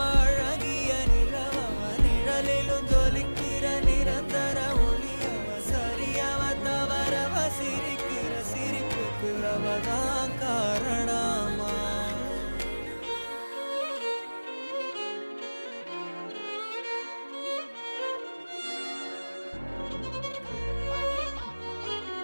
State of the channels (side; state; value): both; inverted; correlation -1.00